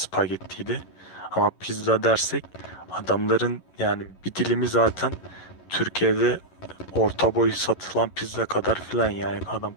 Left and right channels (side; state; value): right; late; 11 ms